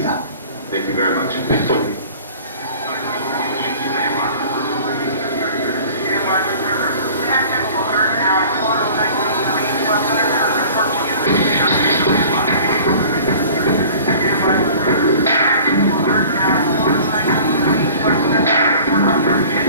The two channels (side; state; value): both; inverted; correlation -0.46